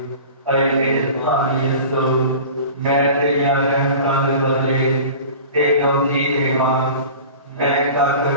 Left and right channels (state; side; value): inverted; both; correlation -0.39